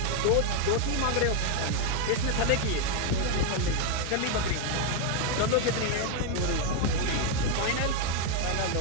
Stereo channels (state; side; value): different; both; correlation 0.01